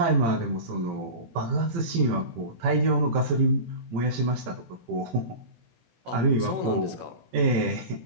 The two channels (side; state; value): left; late; 18 ms